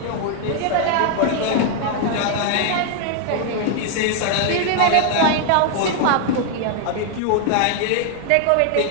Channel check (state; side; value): different; both; correlation 0.00